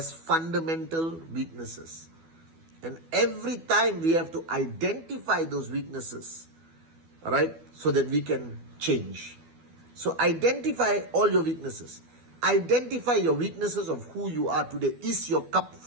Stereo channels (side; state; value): left; late; 12 ms